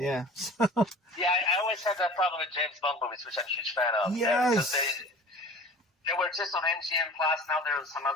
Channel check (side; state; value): both; normal; correlation 0.42